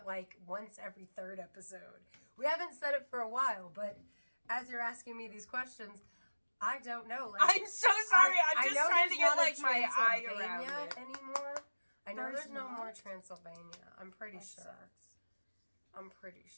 like once every third episode. We haven't said it for a while, but as you're asking me these questions, I don't know. Like, I'm so sorry. I'm just trying to get like my eye around it anymore. I know there's no more Transylvania. I'm pretty sure. Sucks. I'm pretty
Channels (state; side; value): inverted; both; correlation -1.00